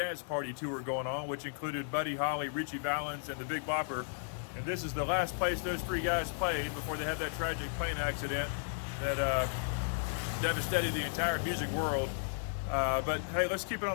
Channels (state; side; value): silent; right; digital silence